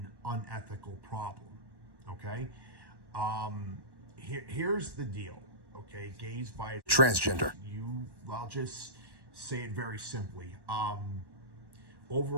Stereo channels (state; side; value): late; left; 1.1 ms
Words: unethical problem, okay? Here's the deal, okay? Gays, bi, transgender. I'll just say it very simply.